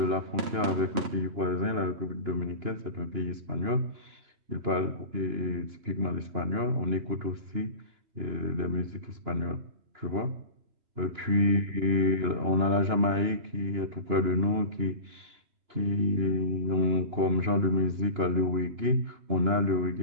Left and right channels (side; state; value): left; late; 2.9 ms